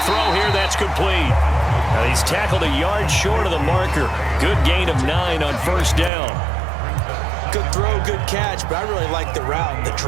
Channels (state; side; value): drops out; left; at 6.1 s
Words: throw here. That's complete. Now he's tackled a yard short of the marker. Good gain of 9 on first down. Good throw, good catch, but I really like the route. The